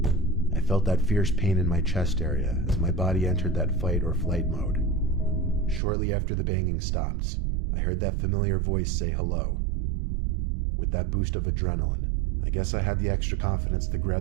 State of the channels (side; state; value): left; drops out; at 5.8 s